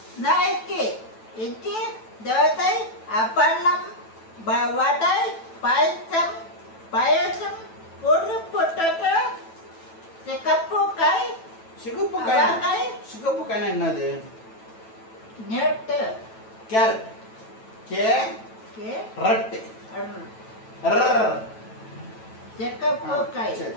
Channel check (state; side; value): late; right; 9.1 ms